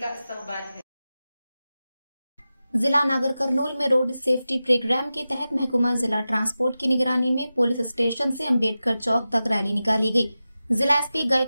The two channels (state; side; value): inverted; both; correlation -0.94